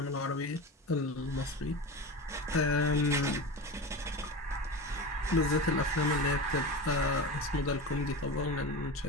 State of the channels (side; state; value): both; normal; correlation 0.26